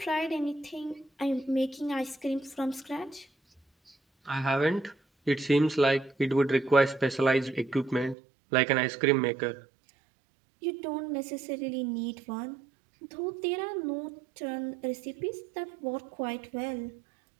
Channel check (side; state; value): left; drops out; at 8.2 s